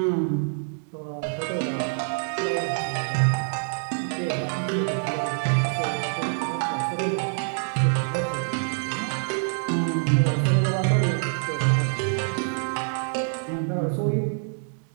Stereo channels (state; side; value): silent; left; 61 dB below the other